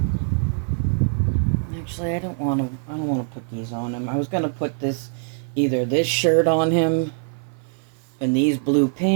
Actually, I don't want to put these on him. I was going to put either this shirt on him and these blue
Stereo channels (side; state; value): left; silent; 59 dB below the other